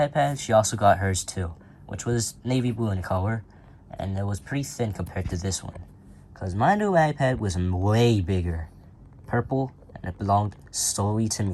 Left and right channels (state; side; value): identical; both; correlation 1.00